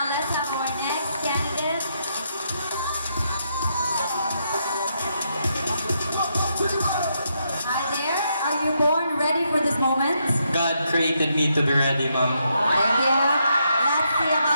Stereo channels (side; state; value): both; inverted; correlation -0.78